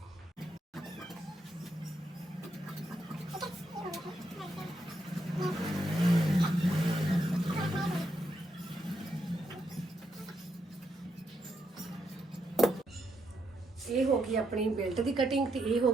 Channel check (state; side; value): normal; both; correlation 0.80